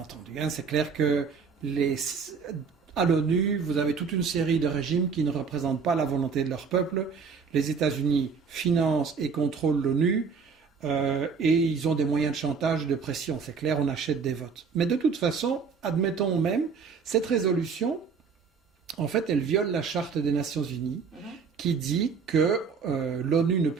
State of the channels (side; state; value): left; quieter; 5.6 dB